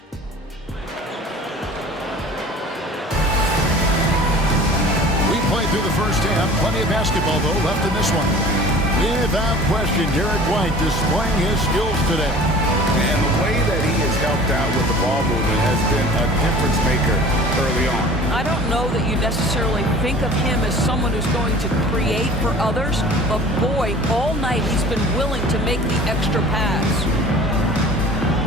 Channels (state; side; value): normal; both; correlation 0.44